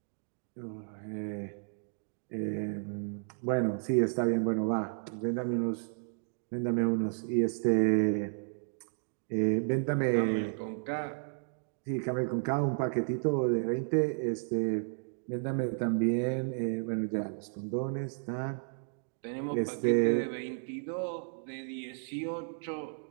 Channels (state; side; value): silent; left; digital silence